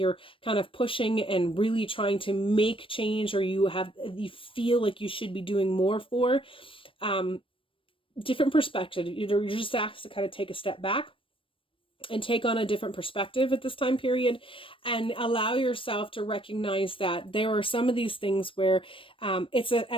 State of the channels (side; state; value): right; late; 0.25 ms